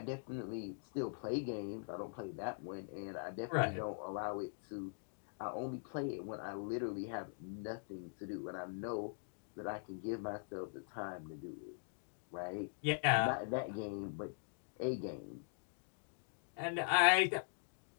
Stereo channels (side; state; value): right; silent; digital silence